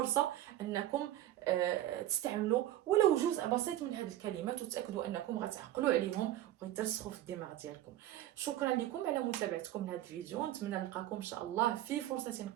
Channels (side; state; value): left; quieter; 13.6 dB